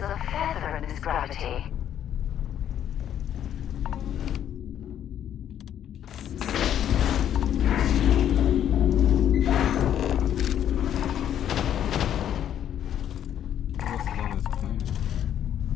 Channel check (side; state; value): right; quieter; 10.2 dB